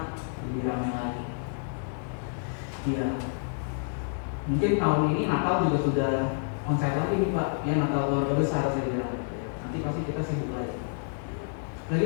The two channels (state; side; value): silent; right; digital silence